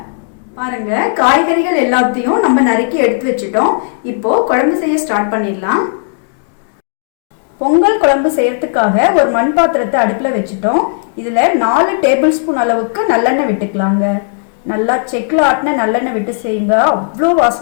பாருங்க, காய்கறிகள் எல்லாத்தையும் நம்ம நறுக்கி எடுத்து வச்சுட்டோம். இப்போ குழம்பு செய்ய ஸ்டார்ட் பண்ணிடலாம். பொங்கல் குழம்பு செய்யறதுக்காக ஒரு மண் பாத்திரத்தை அடுப்புல வச்சுட்டோம். இதுல 4 டேபிள் ஸ்பூன் அளவுக்கு நல்லெண்ணெய் விட்டுக்கலாங்க. நல்லா செக்கில் ஆட்டின நல்லெண்ணெய் விட்டு செய்யுங்க, அவ்வளோ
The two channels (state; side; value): silent; right; digital silence